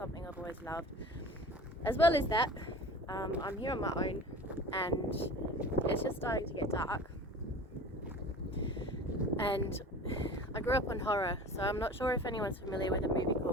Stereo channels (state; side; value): normal; both; correlation 0.39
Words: I've always loved. As well as that, I'm here on my own and it's just starting to get dark. And I grew up on horror, so I'm not sure if anyone's familiar with a movie